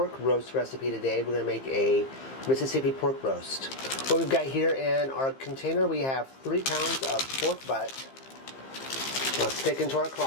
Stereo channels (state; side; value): late; right; 15 ms